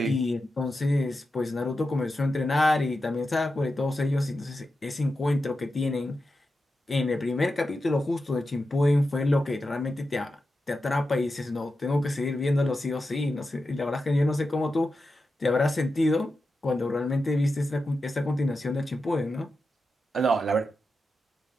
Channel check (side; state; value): both; normal; correlation 0.90